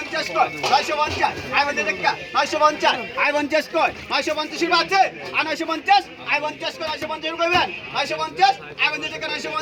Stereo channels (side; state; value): both; identical; correlation 1.00